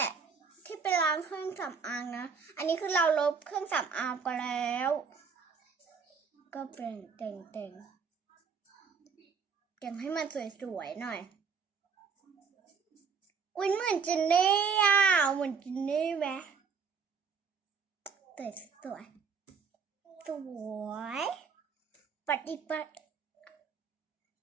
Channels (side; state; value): left; quieter; 5.7 dB